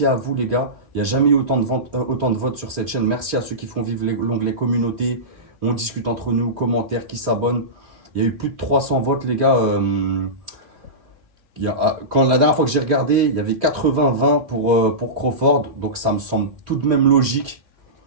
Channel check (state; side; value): late; left; 2.9 ms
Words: à vous les gars. Il n'y a jamais eu autant de votes sur cette chaîne. Merci à ceux qui font vivre l'onglet communauté. On discute entre nous, commentaires, qui s'abonnent. Il y a eu plus de 300 votes les gars. Quand la dernière fois que j'ai regardé, il y avait 80-20 pour Crawford. Donc ça me semble tout de même logique.